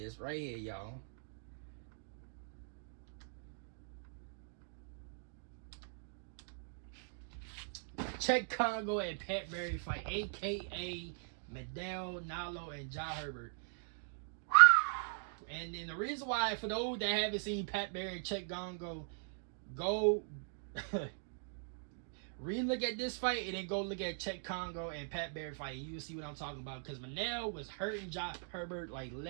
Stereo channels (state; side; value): silent; left; digital silence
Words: right here, y'all. Czech Congo and Pat Barry fight, a.k.a. Medel, Nalo, and Ja Herbert. And then the reason why, for those that haven't seen Pat Barry and Czech Congo, go re-look at this fight and then go look at Czech Congo and Pat Barry fight, and you'll see what I'm talking about. Because Manel was hurting Ja Herbert like